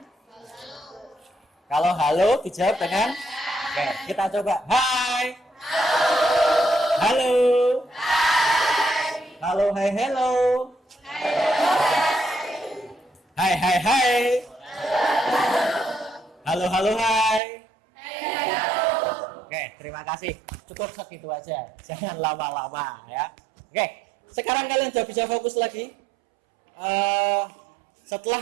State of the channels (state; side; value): drops out; left; at 17.4 s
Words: kalau halo dijawab dengan oke, kita coba. Hai. Halo. Halo, hai, hello. Hai, hai, hai. Halo, halo, hai. Oke, terima kasih. Cukup segitu aja. Jangan lama-lama ya. Oke, sekarang kalian sudah bisa fokus lagi.